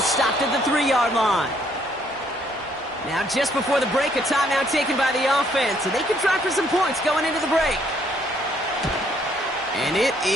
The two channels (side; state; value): both; normal; correlation 0.67